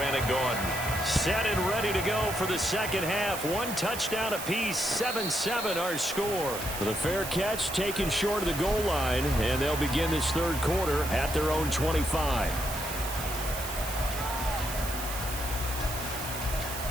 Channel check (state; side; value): noise; right; hiss, 8 dB below the sound